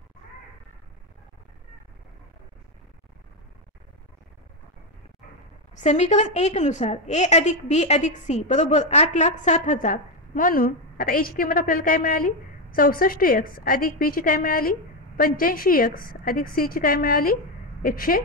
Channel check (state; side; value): normal; both; correlation 0.08